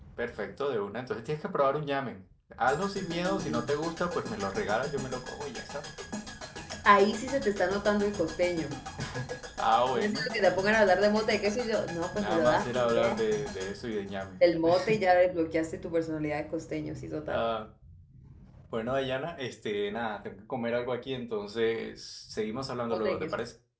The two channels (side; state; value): both; identical; correlation 1.00